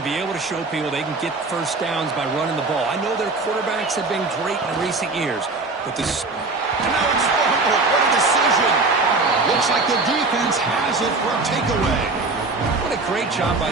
be able to show people they can get first downs by running the ball. I know their quarterbacks have been great in recent years, but this... And now it's fumbled. What a decision. Looks like the defense has it for a takeaway. What a great job by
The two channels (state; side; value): quieter; left; 3.6 dB